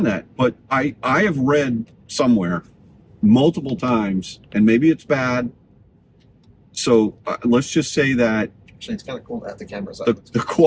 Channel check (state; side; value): identical; both; correlation 1.00